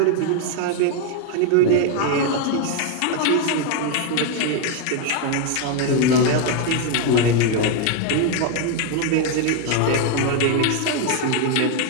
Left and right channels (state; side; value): different; both; correlation 0.01